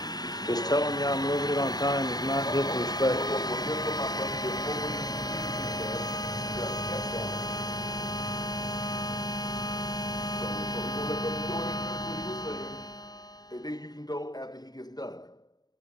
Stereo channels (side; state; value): right; late; 0.19 ms